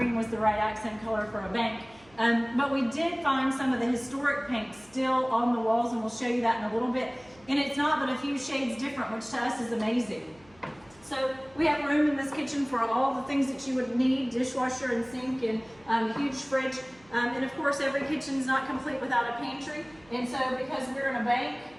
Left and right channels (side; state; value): right; noise; hum, 28 dB below the sound